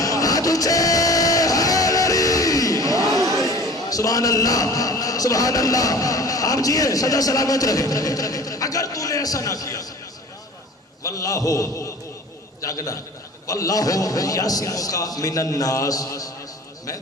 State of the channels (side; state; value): both; normal; correlation 0.43